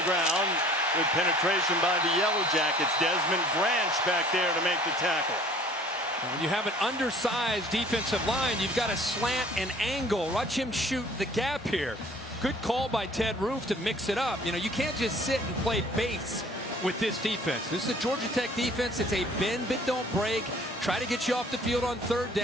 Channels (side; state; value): both; normal; correlation 0.52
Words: ground with penetration by the Yellow Jackets. Desmond Branch back there to make the tackle. When you have an undersized defensive line, you've got to slant and angle. Watch him shoot the gap here. Good call by Ted Roof to mix it up. You know, you can't just sit and play base with this defense. This is a Georgia Tech defense. It's a bend but don't break. Try to get you off the field on 3rd